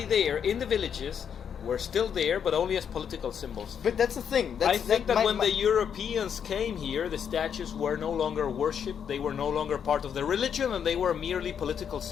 there in the villages were still there, but only as political symbols. But that's the thing. I think that when the Europeans came here, the statues were no longer worshipped, they were no longer part of the religion, and they were merely political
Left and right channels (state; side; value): quieter; right; 7.8 dB